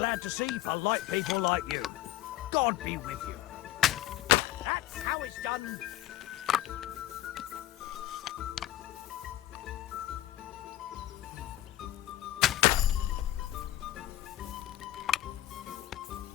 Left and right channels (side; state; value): right; quieter; 14.7 dB